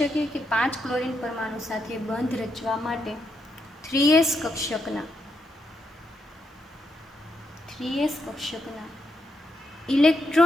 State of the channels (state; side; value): normal; both; correlation 0.81